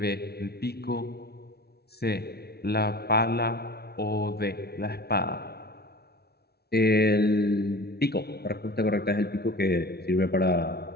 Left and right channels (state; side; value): late; right; 0.46 ms